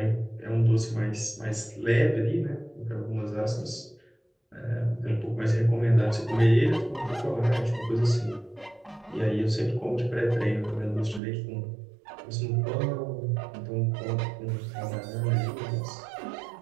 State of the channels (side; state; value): left; drops out; at 11.2 s